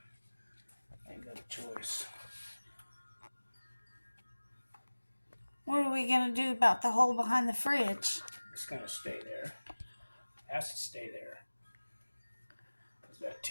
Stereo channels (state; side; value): inverted; both; correlation -1.00